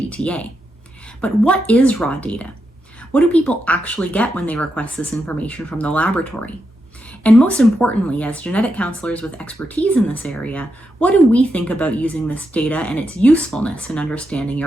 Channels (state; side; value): normal; both; correlation 0.84